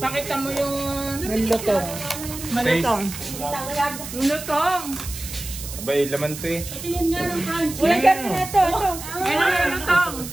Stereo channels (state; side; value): noise; right; hiss, 10 dB below the sound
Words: mo yung Nilutong. malutong. Yung lutong. Abay, laman to eh. Uy, gano'n na ito. Yan ang yung lutong.